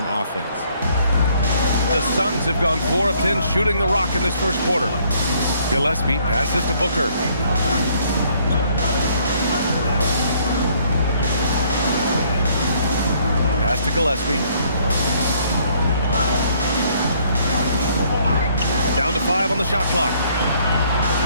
offense. The Suns have gone 4 of 10 shooting the rock in this first quarter. Gillespie passes to Booker. Pass to Gillespie. Down to 5 on the shot clock.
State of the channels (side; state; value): both; inverted; correlation -0.64